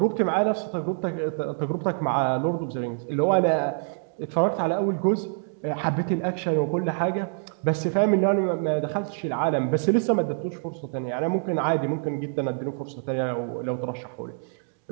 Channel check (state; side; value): silent; left; 59 dB below the other